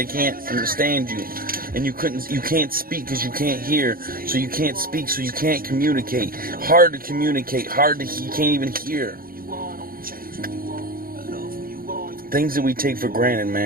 can't understand you. And you can't speak because you can't hear. So you can't speak, so you can't communicate. Hard to communicate, you can't even hear. Things that we take for granted,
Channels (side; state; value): left; late; 0.42 ms